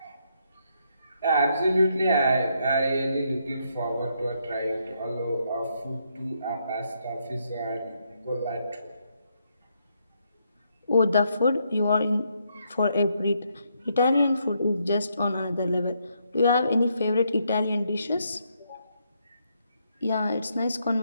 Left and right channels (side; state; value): both; inverted; correlation -0.76